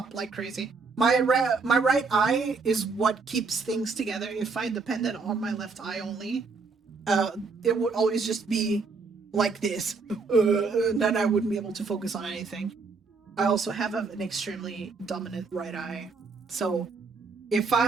like crazy. My right eye is what keeps things together. If I depended on my left eye only, it would always just be like this. Then I wouldn't be able to focus on anything. I also have an extremely dominant right eye. So if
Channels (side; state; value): left; quieter; 4.5 dB